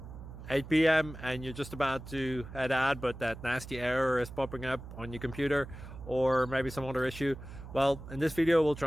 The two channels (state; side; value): noise; right; hum, 13 dB below the sound